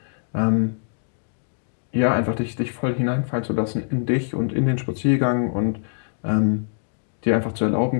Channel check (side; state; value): right; silent; digital silence